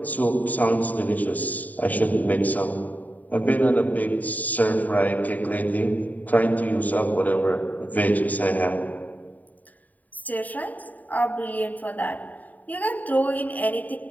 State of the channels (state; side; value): late; right; 0.078 ms